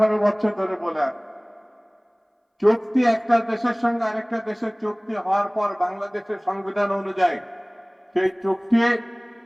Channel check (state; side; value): identical; both; correlation 1.00